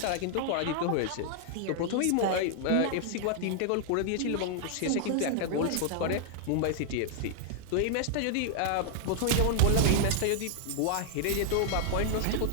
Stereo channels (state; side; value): different; both; correlation -0.01